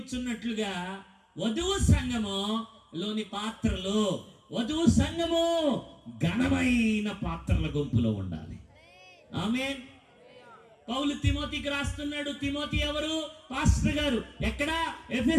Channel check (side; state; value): both; identical; correlation 1.00